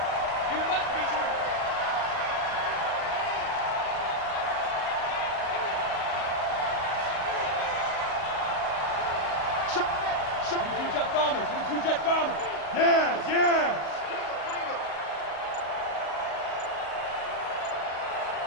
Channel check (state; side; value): late; right; 38 ms